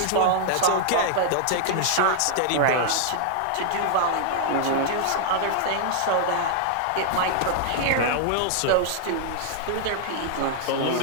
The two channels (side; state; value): both; different; correlation -0.01